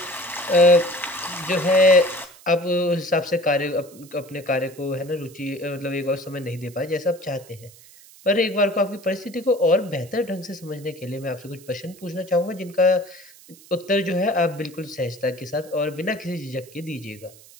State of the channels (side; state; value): right; noise; hiss, 23 dB below the sound